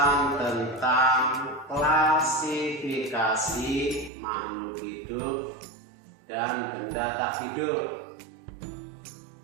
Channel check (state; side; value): drops out; left; at 4.1 s